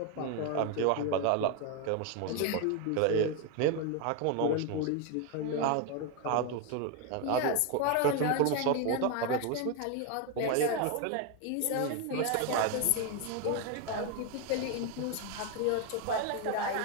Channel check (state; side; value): different; both; correlation 0.01